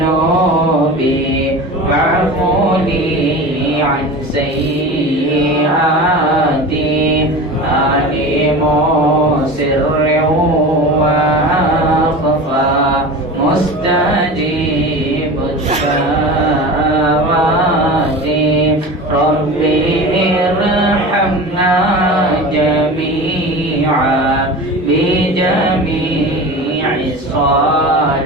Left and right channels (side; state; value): both; normal; correlation 0.32